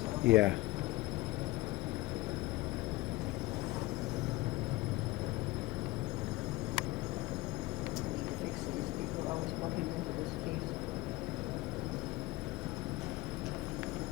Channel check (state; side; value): quieter; right; 19.2 dB